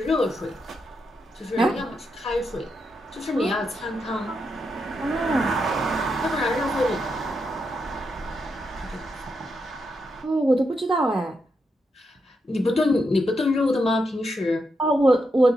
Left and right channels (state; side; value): normal; both; correlation 0.83